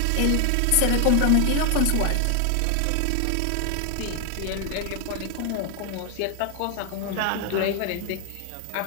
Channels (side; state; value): both; different; correlation 0.00